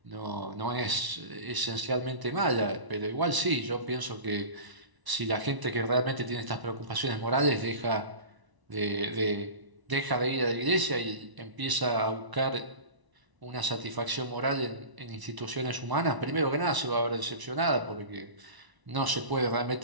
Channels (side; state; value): left; late; 1.0 ms